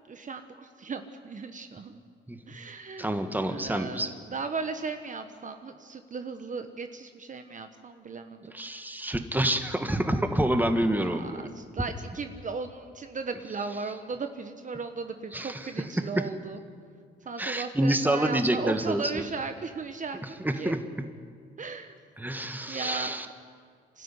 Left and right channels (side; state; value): both; normal; correlation 0.61